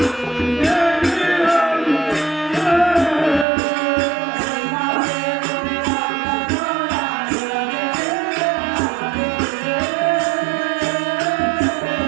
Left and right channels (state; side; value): drops out; left; at 3.5 s